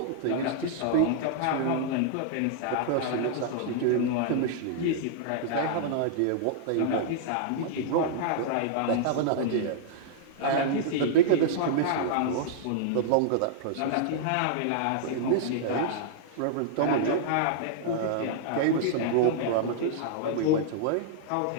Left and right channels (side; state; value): both; different; correlation -0.01